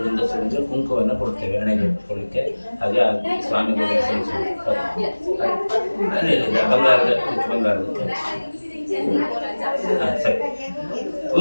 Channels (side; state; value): both; inverted; correlation -1.00